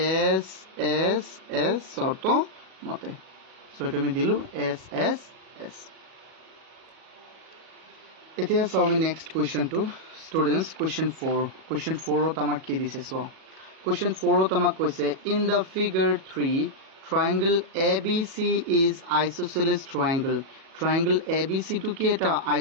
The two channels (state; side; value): late; left; 37 ms